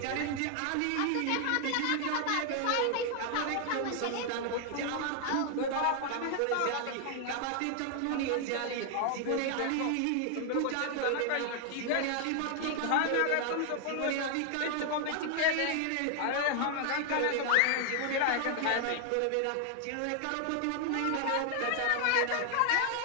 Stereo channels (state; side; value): different; both; correlation 0.00